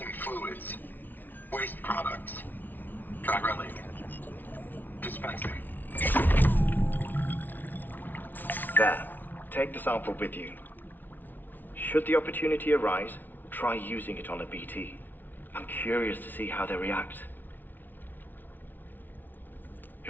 fluids, waste products, dry relic, dispensing. There, take the sample with you. Should the opportunity arise, try using it on a BT. I'm curious to see how they react.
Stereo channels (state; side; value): late; right; 0.087 ms